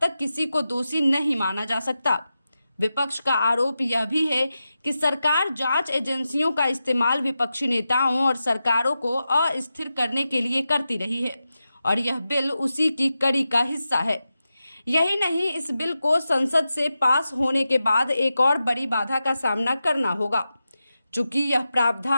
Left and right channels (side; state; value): both; inverted; correlation -0.91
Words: तक किसी को दोषी नहीं माना जा सकता। विपक्ष का आरोप यह भी है कि सरकार जांच एजेंसियों का इस्तेमाल विपक्षी नेताओं और सरकारों को अस्थिर करने के लिए करती रही है और यह बिल उसी की कड़ी का हिस्सा है। यही नहीं, इस बिल को संसद से पास होने के बाद एक और बड़ी बाधा का सामना करना होगा। चूंकि यह